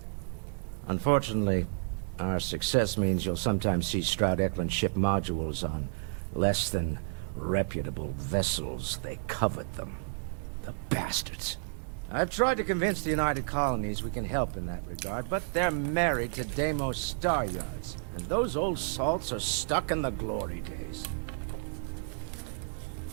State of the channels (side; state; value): left; silent; 57 dB below the other